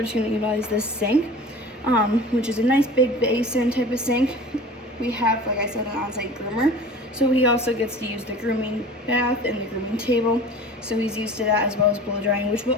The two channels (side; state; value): both; normal; correlation 0.40